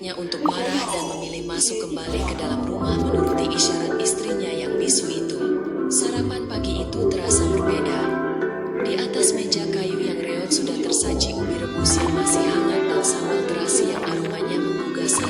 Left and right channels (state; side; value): identical; both; correlation 1.00